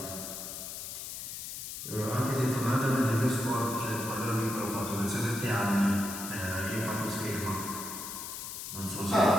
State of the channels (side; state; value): left; noise; hiss, 7 dB below the sound